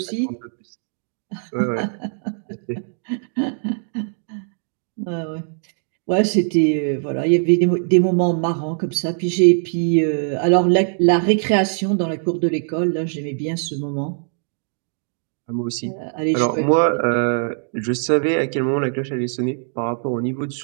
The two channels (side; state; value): left; silent; 65 dB below the other